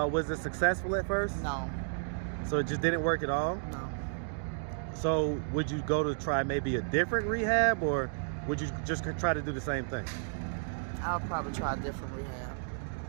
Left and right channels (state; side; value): silent; left; digital silence